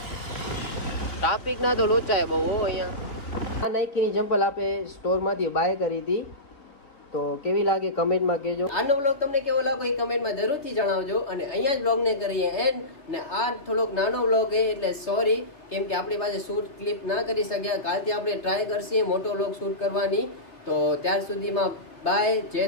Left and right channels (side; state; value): right; late; 3.1 ms